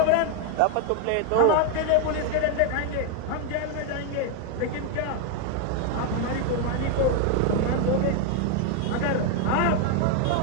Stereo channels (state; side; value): different; both; correlation 0.01